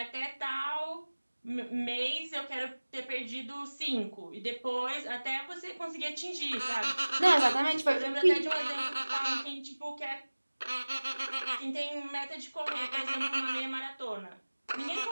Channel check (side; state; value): both; inverted; correlation -1.00